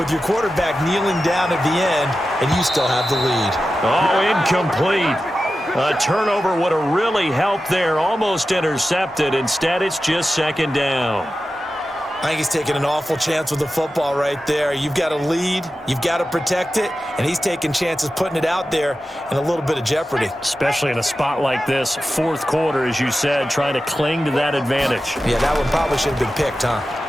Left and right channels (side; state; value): both; normal; correlation 0.93